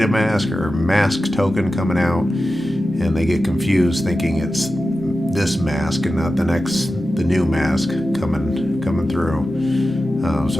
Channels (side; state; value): both; normal; correlation 0.93